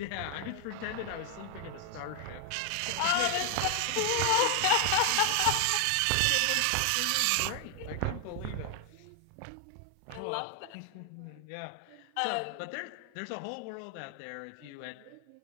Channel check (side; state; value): both; different; correlation 0.00